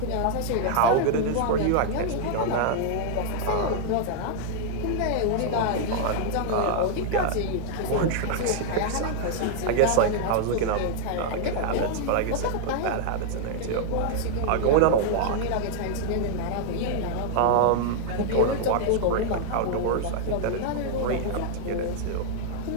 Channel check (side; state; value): both; different; correlation 0.00